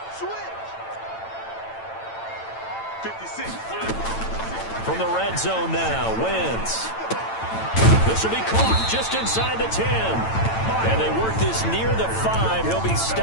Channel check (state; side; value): late; right; 9.0 ms